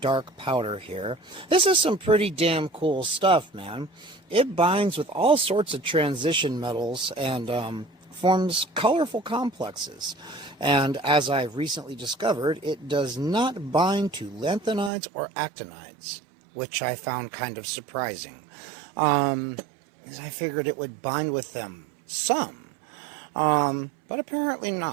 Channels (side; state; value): left; drops out; at 14.9 s